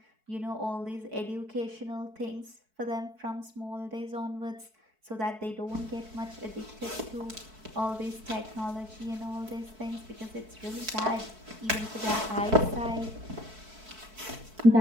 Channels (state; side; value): late; left; 4.6 ms